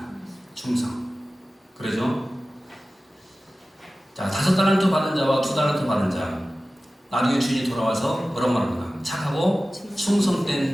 충성. 그러죠? 자, 5달란트 받은 자와 2달란트 받은 자, 나중에 주인이 돌아와서 뭐라고 말합니까? 착하고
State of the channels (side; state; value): both; normal; correlation 0.96